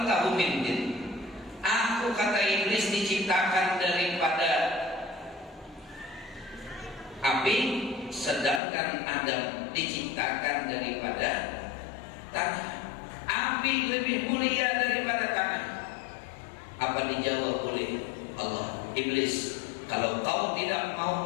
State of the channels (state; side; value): drops out; right; at 8.6 s